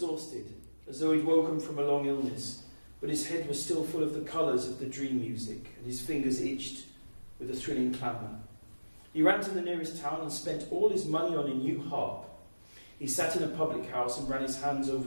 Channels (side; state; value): both; inverted; correlation -1.00